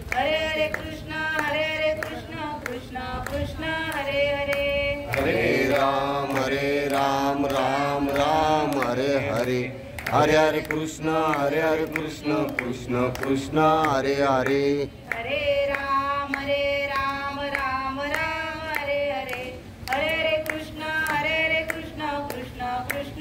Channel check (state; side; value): identical; both; correlation 1.00